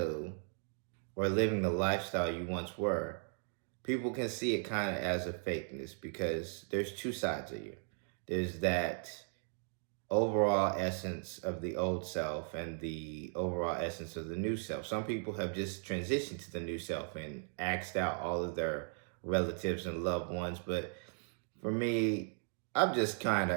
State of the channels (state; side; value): silent; left; 53 dB below the other